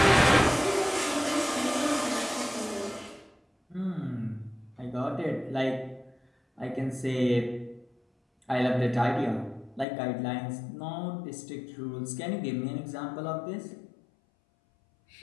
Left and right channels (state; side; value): drops out; right; at 9.9 s